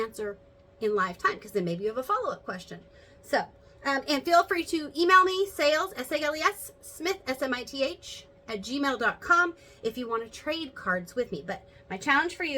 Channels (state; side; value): identical; both; correlation 1.00